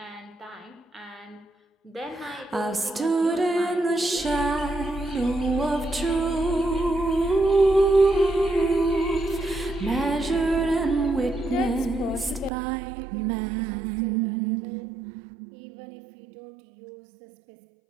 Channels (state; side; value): drops out; left; at 12.5 s